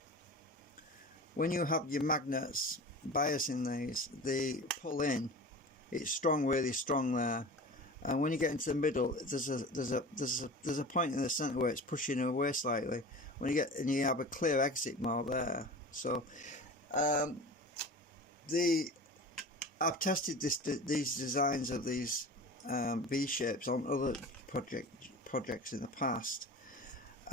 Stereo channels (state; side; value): normal; both; correlation 0.35